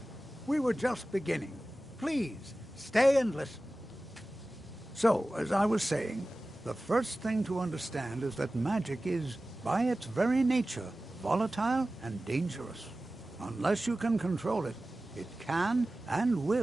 We were just beginning. Please, stay and listen. So, as I was saying, the first thing to understand is that magic is, by its very nature, volatile and dangerous. Unless you can control it, it can and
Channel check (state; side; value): normal; both; correlation 0.96